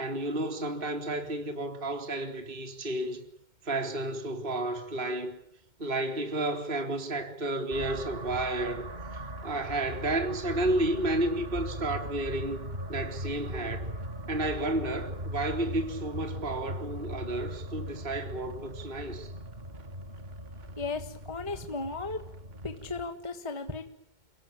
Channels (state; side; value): late; left; 2.2 ms